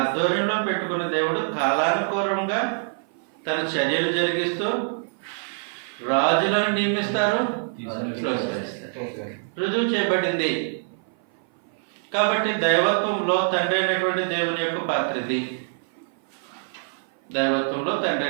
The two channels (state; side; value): silent; left; 56 dB below the other